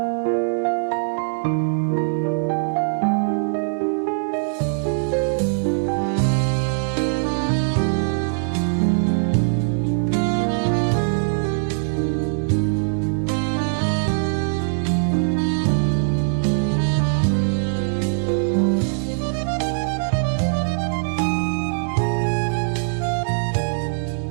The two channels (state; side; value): silent; left; digital silence